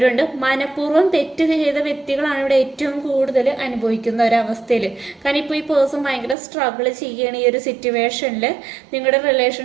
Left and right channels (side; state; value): left; drops out; at 6.4 s